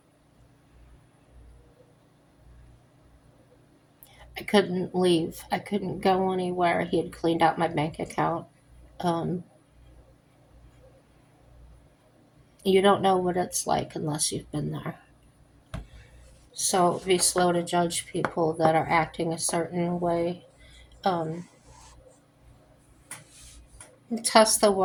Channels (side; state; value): both; identical; correlation 1.00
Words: I couldn't leave. I couldn't go anywhere. He had cleaned out my bank account. Um, you don't know what it's like unless you've been there. So be slow to judge people that are acting a certain way. Um, Test the